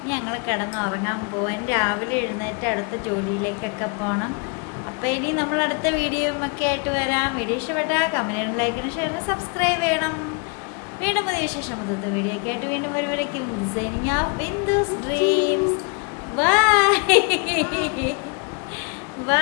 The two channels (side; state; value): right; quieter; 33.8 dB